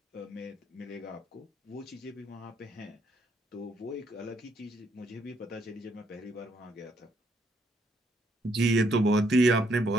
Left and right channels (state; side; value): normal; both; correlation 0.72